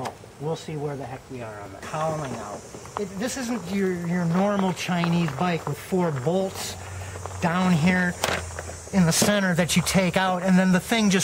we'll see where the heck we are on the cowling out. This isn't your normal Chinese bike with 4 bolts down here in the center that you take out and then the thing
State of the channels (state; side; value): identical; both; correlation 1.00